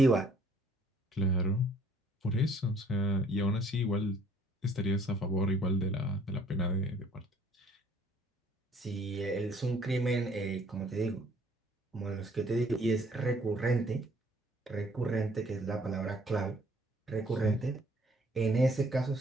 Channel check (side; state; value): both; normal; correlation 0.60